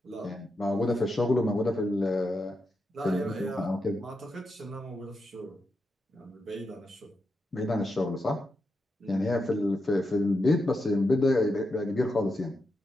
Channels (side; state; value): both; normal; correlation 0.86